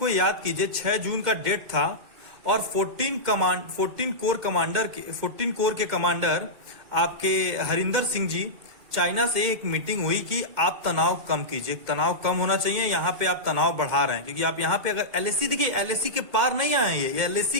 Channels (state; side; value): late; left; 2.1 ms